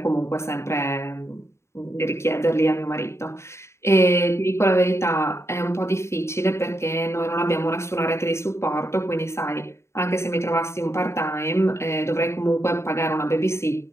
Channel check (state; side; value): late; right; 0.13 ms